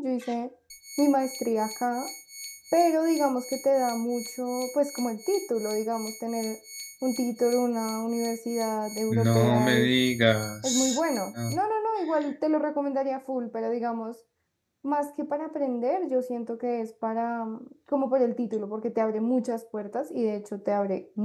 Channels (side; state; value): both; identical; correlation 1.00